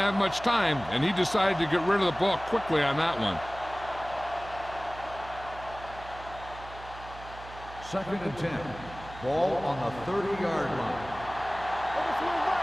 have much time, and he decided to get rid of the ball quickly on that one. Second and 10. Ball on the 30-yard line.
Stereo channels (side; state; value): right; noise; hum, 16 dB below the sound